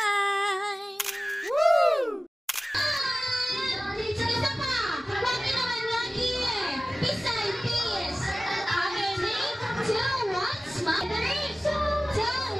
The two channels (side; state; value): both; normal; correlation 0.97